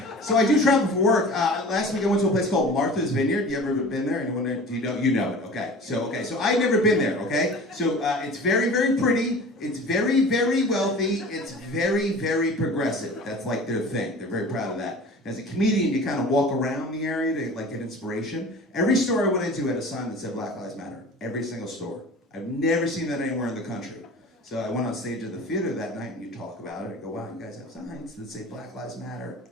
So I do travel for work. Last week I went to a place called Martha's Vineyard. You ever been there? Anyone there? Do you know? You know it. Okay. So I've never been there. Okay. So it's very, very pretty. It's very, very wealthy. It's very, very progressive. That's like their thing. They're very proud of that. As a comedian, you kind of walk around the area to like get inspiration. Every store I went into had a sign that said Black Lives Matter. Every single store. I've never seen that anywhere in the country. So I went on stage at the theater that night and you talk about it. I go, "Wow, you guys have signs that say Black Lives Matter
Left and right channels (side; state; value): both; normal; correlation 0.40